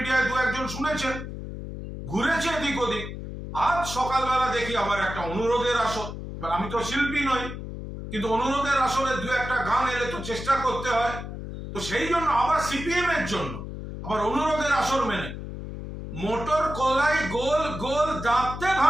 দু একজন শুনেছেন, ঘুরেছে এদিক ওদিক। আজ সকালবেলা দেখি আমার একটা অনুরোধের আসর, আমি তো শিল্পী নই, কিন্তু অনুরোধের আসরে দু একটা গান এলে তো চেষ্টা করতে হয়, তো সেই জন্য আবার সিপিএম এর জন্য আবার অনুরোধের আসর মেনে মোটর কলাই গোল গোল দাঁতে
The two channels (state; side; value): noise; left; hum, 8 dB below the sound